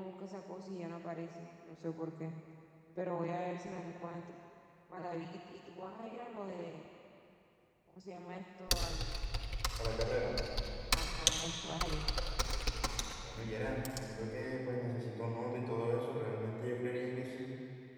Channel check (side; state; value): both; identical; correlation 1.00